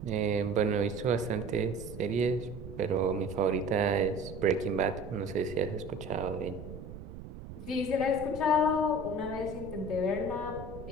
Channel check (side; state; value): right; noise; rumble, 12 dB below the sound